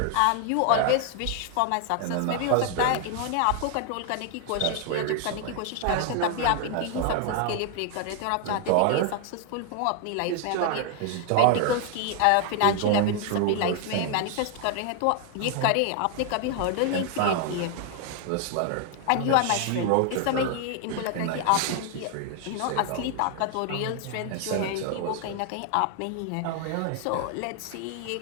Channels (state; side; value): different; both; correlation 0.00